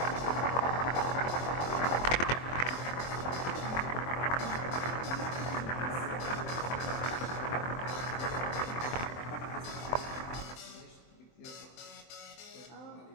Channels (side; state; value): right; late; 23 ms